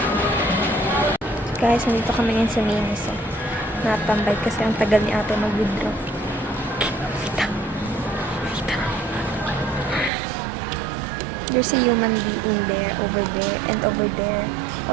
Guys, nandito kami ngayon sa Minis. Natambay kasi ang tagal ni ate mag-withdraw. There's a human being there, over there, and over there.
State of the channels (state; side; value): drops out; left; at 10.1 s